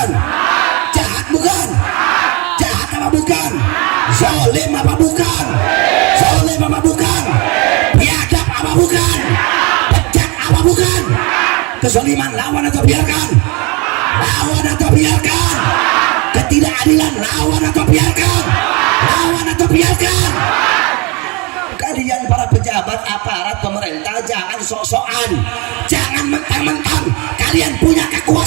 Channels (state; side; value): quieter; left; 28.5 dB